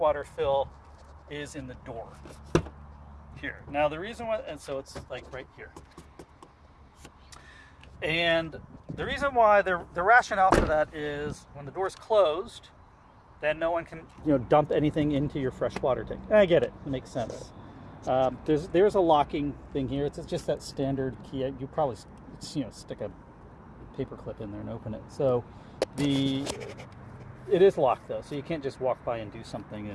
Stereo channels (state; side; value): identical; both; correlation 1.00